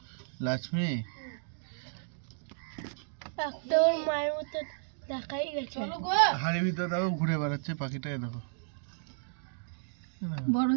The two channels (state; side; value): silent; left; digital silence